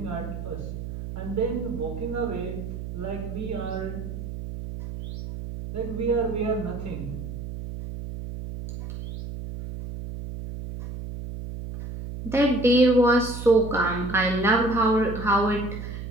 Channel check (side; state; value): right; noise; hum, 8 dB below the sound